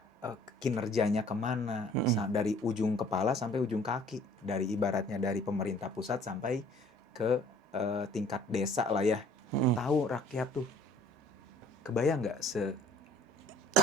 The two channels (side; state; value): both; normal; correlation 0.54